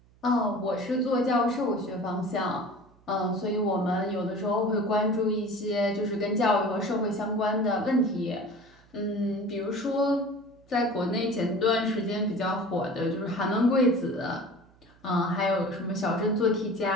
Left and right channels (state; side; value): noise; right; hum, 29 dB below the sound